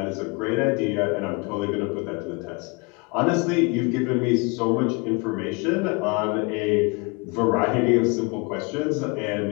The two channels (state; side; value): quieter; right; 29.8 dB